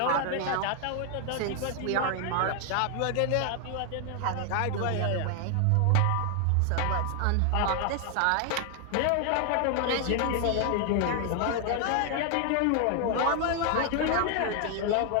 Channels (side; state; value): both; different; correlation 0.00